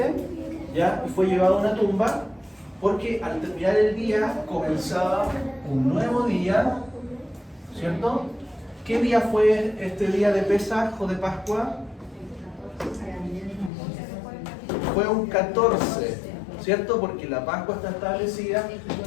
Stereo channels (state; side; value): drops out; right; at 13.7 s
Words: ¿ya? Y fue llevado a una tumba, porque al terminar el día comenzaba un nuevo día, ¿cierto? ¿Qué día fue este día de Pesaj o de Pascua? Fue un 14, ¿cierto? Porque la Pascua está establecida